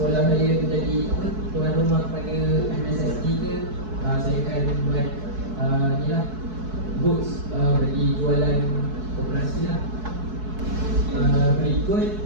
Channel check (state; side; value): late; left; 4.6 ms